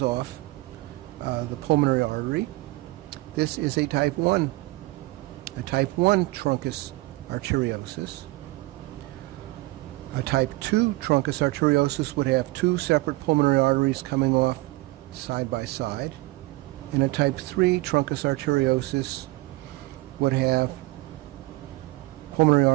off the pulmonary artery, this is a type 1 truncus arteriosus. A type 2 truncus arteriosus would have two separate pulmonary arteries coming off side by side, and a type 3 truncus arteriosus would have pulmonary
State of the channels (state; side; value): quieter; left; 20.9 dB